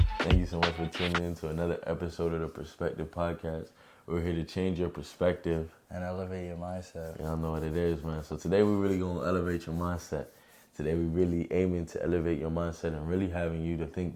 Thank you so much for tuning in to another episode of the Perspective Podcast. We're here to change your perspective and elevate your mindset. Y'all know what it is, man. So today we're really going to elevate your mindset. Today we're really aiming to elevate your mindset and really having you to think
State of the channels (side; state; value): both; identical; correlation 1.00